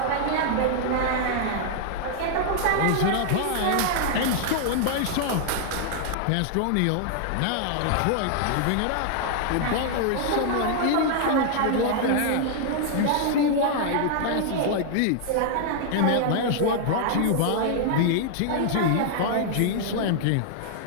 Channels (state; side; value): different; both; correlation -0.01